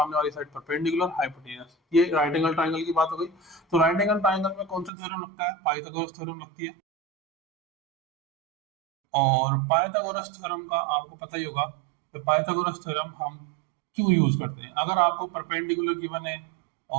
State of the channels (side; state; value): left; drops out; at 4.9 s